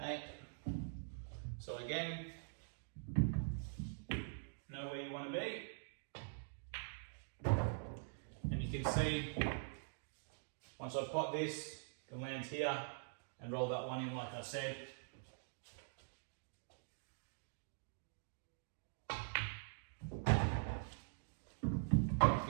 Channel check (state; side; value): silent; left; digital silence